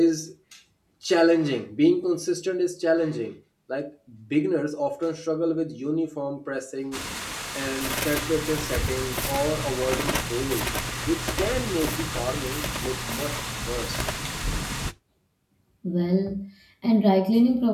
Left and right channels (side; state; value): both; identical; correlation 1.00